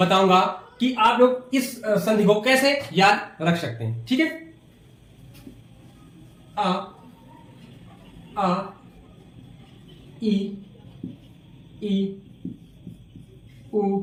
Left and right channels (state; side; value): identical; both; correlation 1.00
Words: कि आप लोग इस संधि को कैसे याद रख सकते हैं। ठीक है। आ ई उ